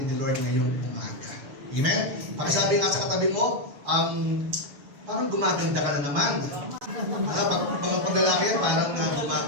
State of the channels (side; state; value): left; late; 6.9 ms